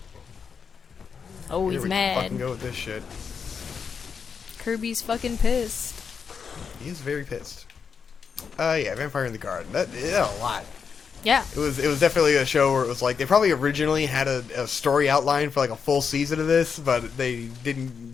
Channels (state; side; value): quieter; right; 6.2 dB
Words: Oh, Here he's we mad. fucking go with this shit. Kirby's fucking pissed. He is very pissed. Yeah, Vampire in the Garden. That a lot. Yeah. It was definitely a show where it was like they probably originally had a story outline for like a full season of this, but they